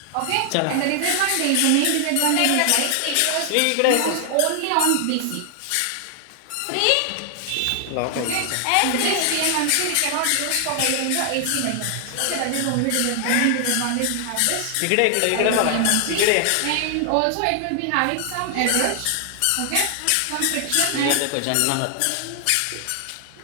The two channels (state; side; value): different; both; correlation 0.00